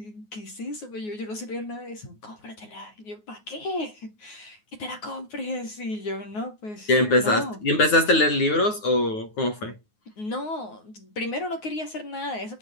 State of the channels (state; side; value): late; right; 9.5 ms